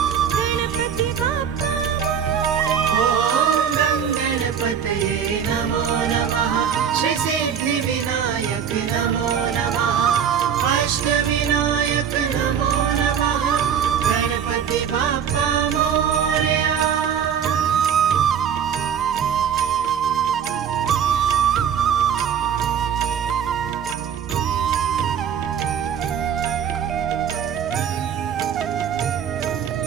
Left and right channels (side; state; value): left; quieter; 8.0 dB